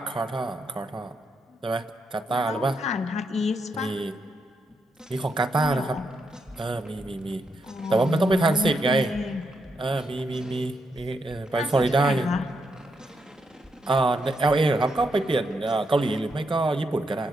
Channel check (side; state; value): both; normal; correlation 0.80